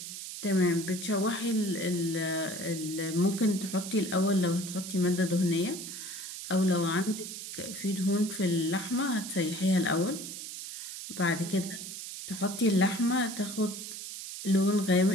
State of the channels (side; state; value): right; noise; hiss, 9 dB below the sound